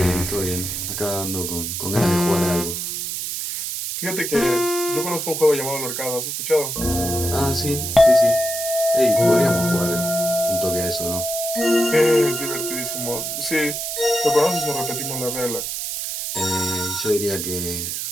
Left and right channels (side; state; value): right; noise; hiss, 4 dB below the sound